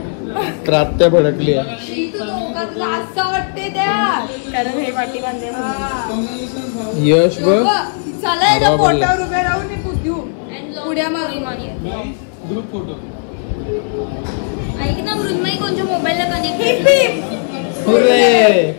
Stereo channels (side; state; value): right; silent; digital silence